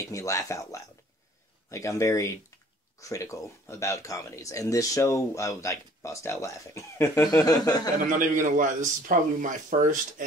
me laugh out loud. Like, I'm very critical about comedies. And this show, I would, like, bust out laughing. And I'm not even going to lie, this is probably my first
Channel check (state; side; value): normal; both; correlation 0.54